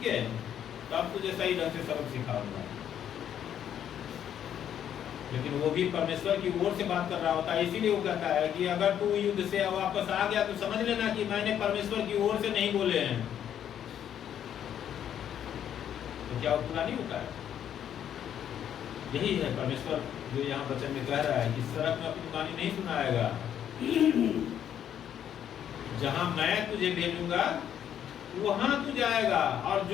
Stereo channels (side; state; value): right; quieter; 9.7 dB